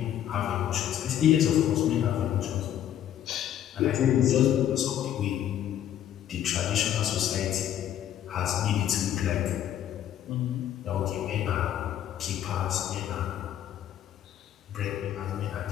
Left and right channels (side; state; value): right; quieter; 10.9 dB